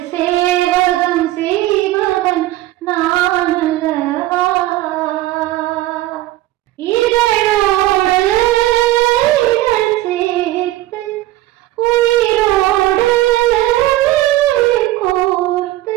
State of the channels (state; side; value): quieter; left; 16.1 dB